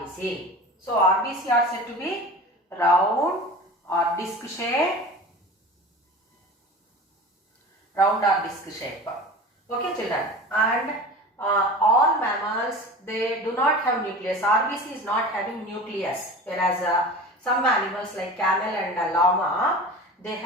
So RBC are said to be round or disc shape. Round or disc shape. Okay, children. And all mammals, they do not have nucleus. RBC is not having nucleus. Whereas some animals like camel and llama, they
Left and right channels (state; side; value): normal; both; correlation 0.36